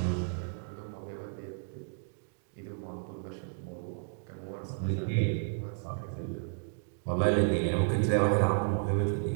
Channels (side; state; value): left; silent; digital silence